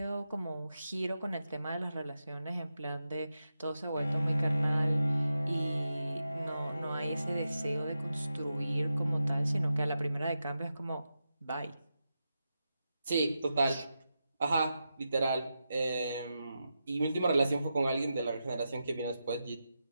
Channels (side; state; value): both; inverted; correlation -0.89